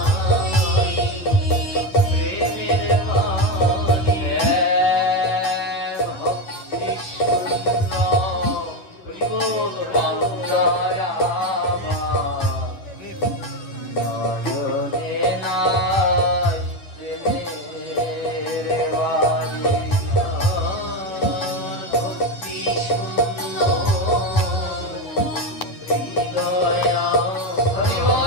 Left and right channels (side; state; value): right; late; 10 ms